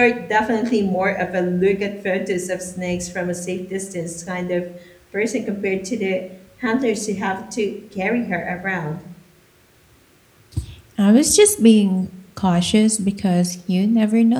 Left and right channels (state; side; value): identical; both; correlation 1.00